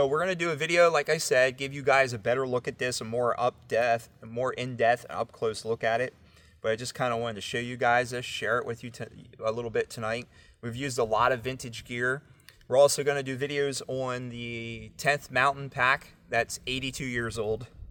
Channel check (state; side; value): identical; both; correlation 1.00